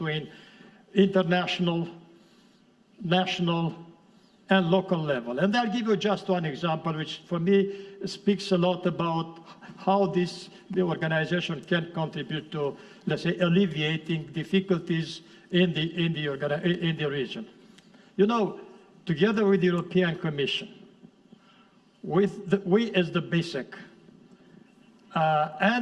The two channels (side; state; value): both; identical; correlation 1.00